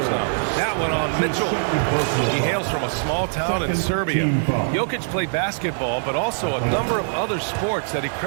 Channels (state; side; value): silent; left; 60 dB below the other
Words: now. That one on Mitchell. He hails from a small town in Serbia. Jokic played basketball, but also a number of other sports that he